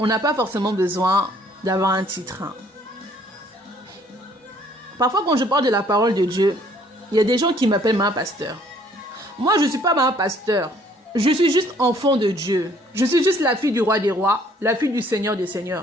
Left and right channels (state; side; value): normal; both; correlation 0.61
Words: n'a pas forcément besoin d'avoir un titre. Parfois, quand je parle de la parole de Dieu, il y a des gens qui m'appellent ma pasteur. Moi, je ne suis pas ma pasteur. Je suis juste enfant de Dieu. Je suis juste la fille du roi des rois, la fille du Seigneur des